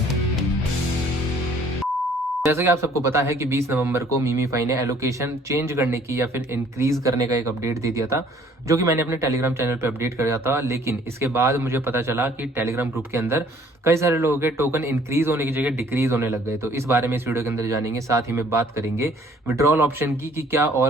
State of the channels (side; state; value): both; normal; correlation 0.58